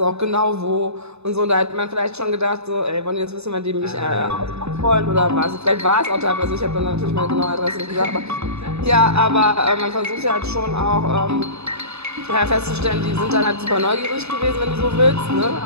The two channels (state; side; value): late; left; 0.80 ms